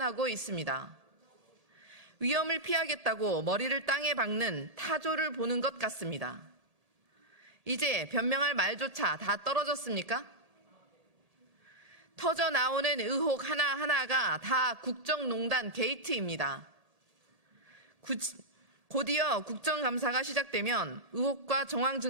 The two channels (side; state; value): left; late; 1.3 ms